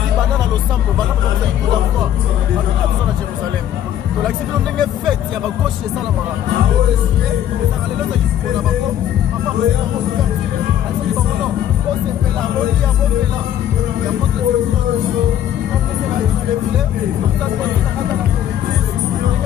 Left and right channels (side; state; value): right; quieter; 10.8 dB